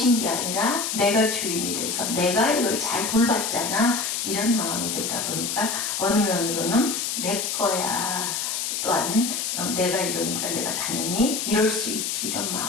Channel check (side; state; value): left; noise; hiss, 2 dB below the sound